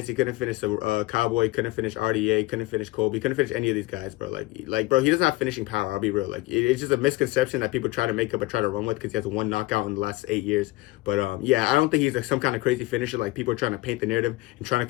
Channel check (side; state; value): right; quieter; 19.7 dB